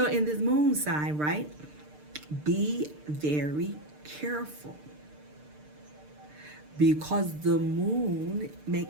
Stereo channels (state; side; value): late; left; 6.7 ms